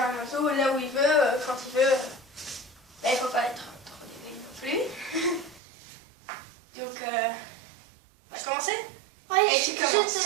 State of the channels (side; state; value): left; drops out; at 5.6 s